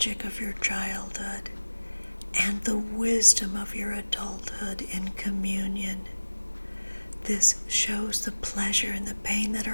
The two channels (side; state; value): both; inverted; correlation -1.00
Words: of your childhood and the wisdom of your adulthood in communion. This shows the pleasure and the pain that